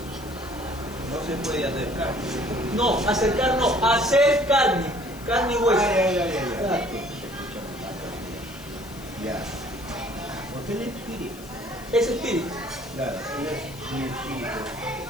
No se puede acercar. No, acercar no, hacer carne, carne y hueso. Claro. Ya. Porque el espíritu. Es espíritu. Claro, él es mi espíritu.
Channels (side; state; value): left; noise; hiss, 19 dB below the sound